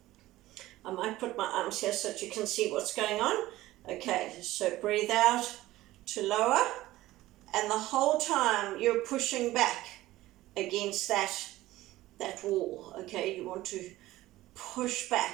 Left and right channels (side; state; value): left; quieter; 16.6 dB